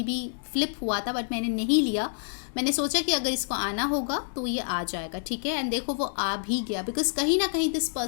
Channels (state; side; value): silent; right; 60 dB below the other